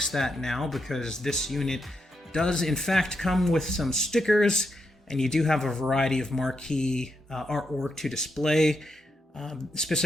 that now because this unit does in fact come with some stickers, and you do have a variety of marquee artwork to display.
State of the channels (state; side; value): normal; both; correlation 0.83